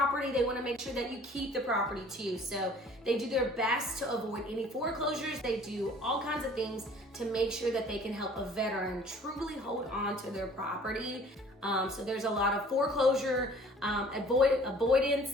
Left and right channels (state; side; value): normal; both; correlation 0.52